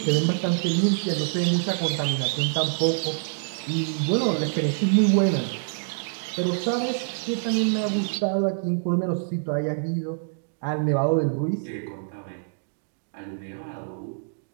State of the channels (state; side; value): silent; left; digital silence